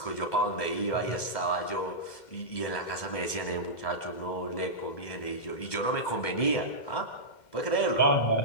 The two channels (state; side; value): late; right; 2.1 ms